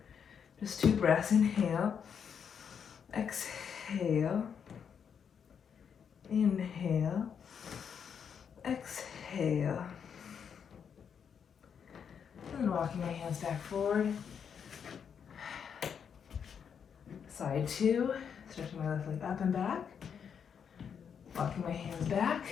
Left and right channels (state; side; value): quieter; right; 7.3 dB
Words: Just 2 breaths. Inhale, exhale, inhale, exhale. And then walking my hands back forward. Side 2, stretching my left leg up and back. Walking my hands back.